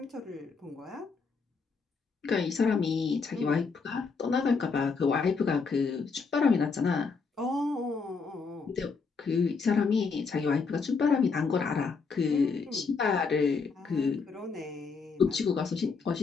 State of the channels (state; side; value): quieter; right; 4.9 dB